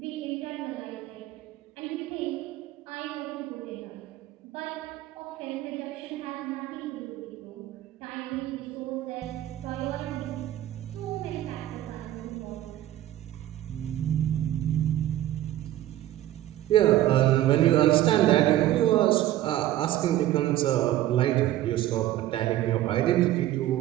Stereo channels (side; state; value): left; quieter; 13.9 dB